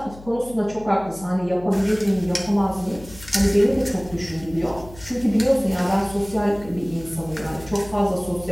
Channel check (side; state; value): left; noise; hum, 19 dB below the sound